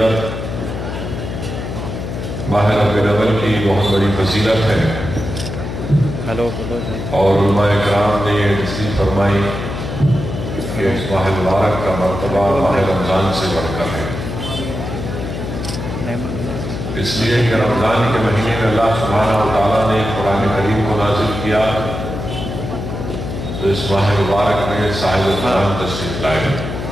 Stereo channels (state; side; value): noise; left; hum, 6 dB below the sound